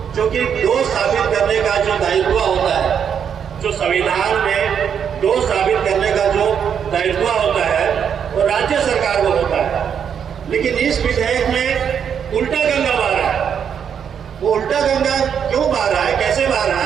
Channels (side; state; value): left; quieter; 7.8 dB